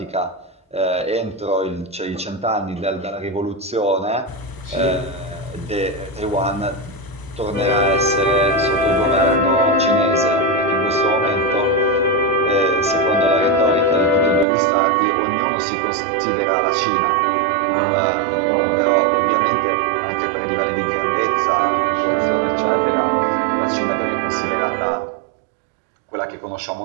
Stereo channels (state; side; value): drops out; left; at 14.5 s